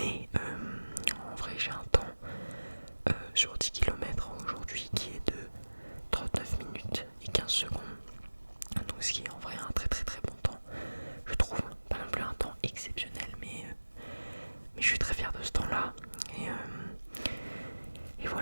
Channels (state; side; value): inverted; both; correlation -1.00